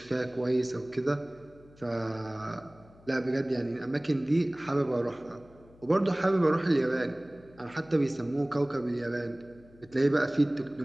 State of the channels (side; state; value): left; noise; hum, 25 dB below the sound